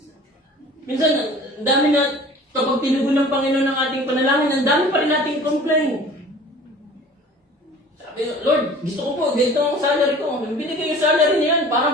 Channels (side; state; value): both; normal; correlation 0.45